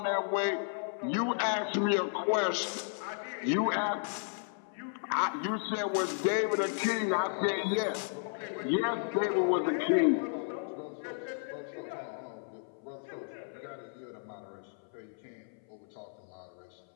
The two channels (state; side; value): silent; right; 55 dB below the other